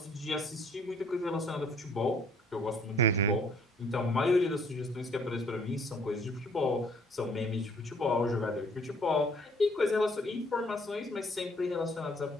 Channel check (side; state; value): both; normal; correlation 0.60